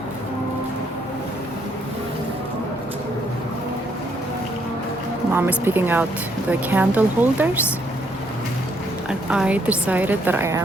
Mom is picking out the candle holders. And I decided that I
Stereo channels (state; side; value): normal; both; correlation 0.71